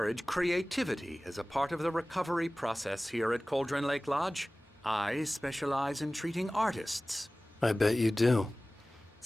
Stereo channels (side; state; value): both; normal; correlation 0.98